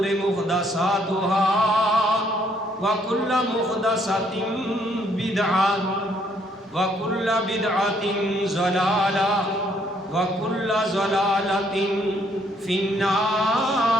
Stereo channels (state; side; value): normal; both; correlation 0.68